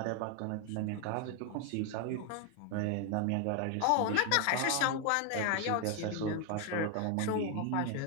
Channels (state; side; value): different; both; correlation 0.01